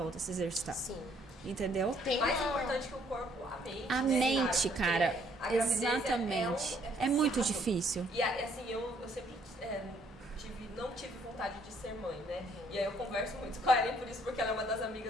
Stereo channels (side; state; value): both; normal; correlation 0.65